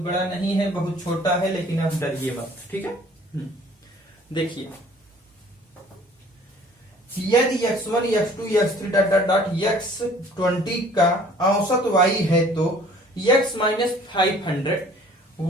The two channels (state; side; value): normal; both; correlation 0.53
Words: नहीं है, बहुत छोटा है, लेकिन अब डरिए मत। ठीक है, देखिए यदि x1 x2 x3 dot dot dot x20 का औसत y है तो x minus 500,